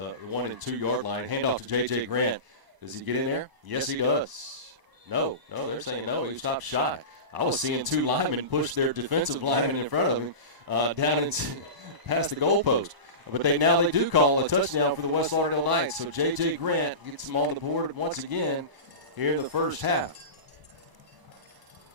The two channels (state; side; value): late; left; 1.0 ms